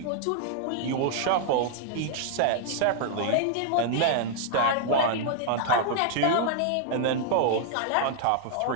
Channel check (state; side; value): different; both; correlation -0.01